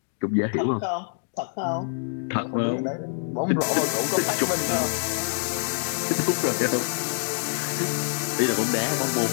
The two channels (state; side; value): silent; right; 61 dB below the other